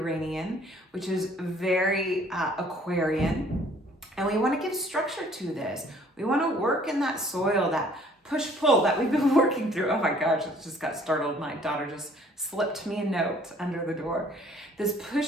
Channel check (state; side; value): normal; both; correlation 0.58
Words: which is very Aquarian. And we want to give structure to this. We want to work in that soil, that push-pull that we've been working through. Oh my gosh, it just got startled. My daughter just slipped me a note under the door. This